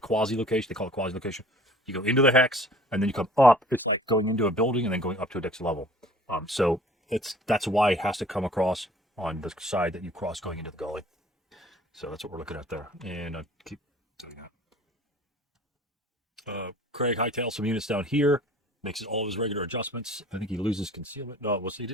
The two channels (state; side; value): normal; both; correlation 0.49